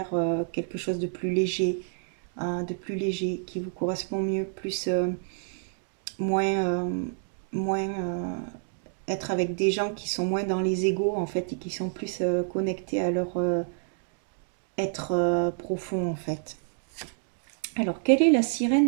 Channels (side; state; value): left; silent; 59 dB below the other